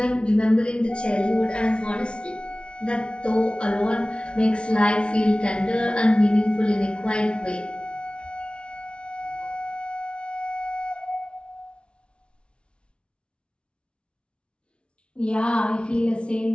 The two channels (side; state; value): right; late; 0.058 ms